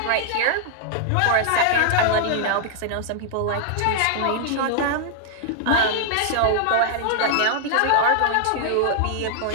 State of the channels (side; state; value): both; different; correlation -0.01